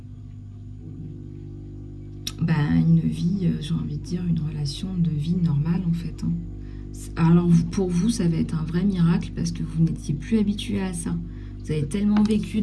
Une vie, j'ai envie de dire, une relation de vie normale en fait. Hein. Alors pour vous, ça va être un vrai miracle parce que vous n'étiez plus habitué à ça. Vous avez tellement vécu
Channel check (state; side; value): identical; both; correlation 1.00